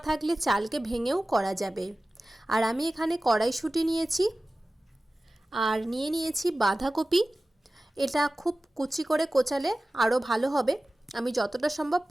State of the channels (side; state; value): both; normal; correlation 0.96